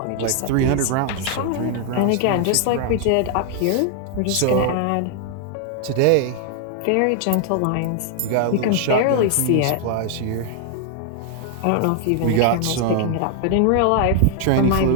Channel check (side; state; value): both; different; correlation 0.00